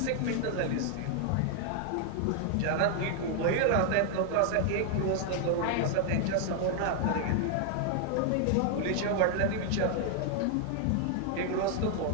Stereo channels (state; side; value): different; both; correlation 0.00